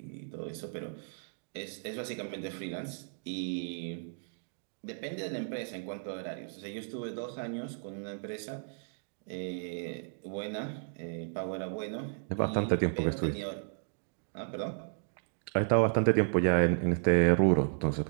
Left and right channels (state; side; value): silent; left; digital silence